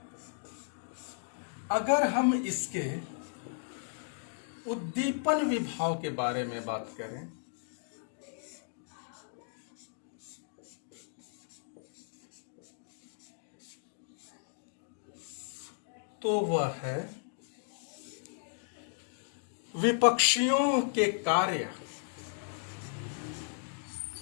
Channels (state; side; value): silent; right; digital silence